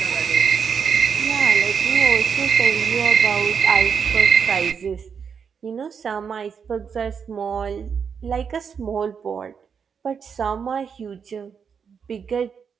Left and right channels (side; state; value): left; quieter; 6.6 dB